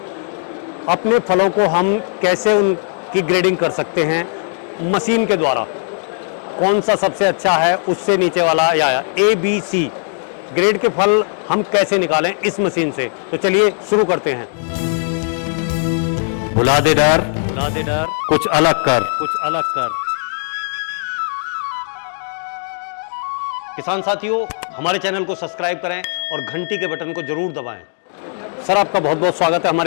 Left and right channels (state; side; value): silent; right; 61 dB below the other